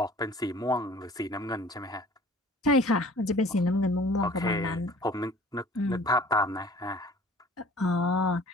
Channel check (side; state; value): both; normal; correlation 0.49